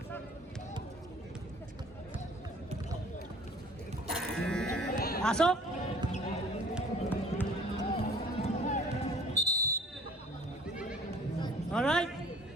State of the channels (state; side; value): normal; both; correlation 0.52